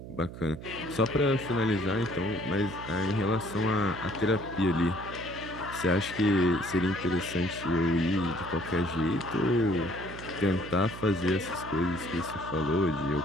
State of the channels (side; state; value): right; noise; hum, 12 dB below the sound